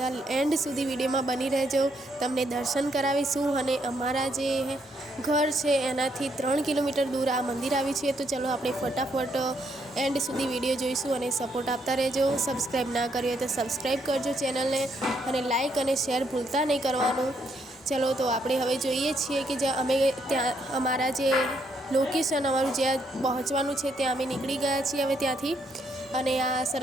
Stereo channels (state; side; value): normal; both; correlation 0.74